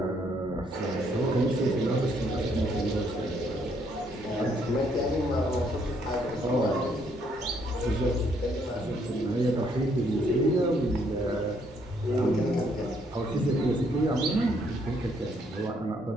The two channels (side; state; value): both; normal; correlation 0.70